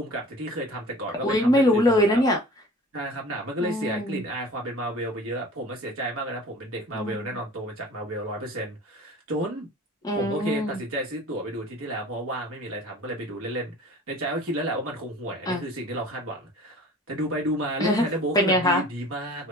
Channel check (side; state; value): both; normal; correlation 0.43